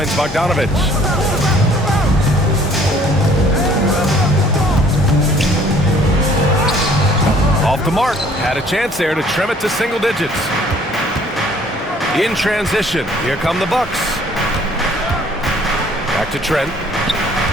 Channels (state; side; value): normal; both; correlation 0.57